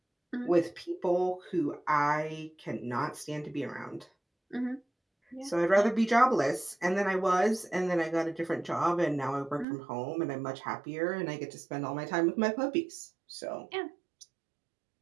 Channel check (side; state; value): left; drops out; at 9.7 s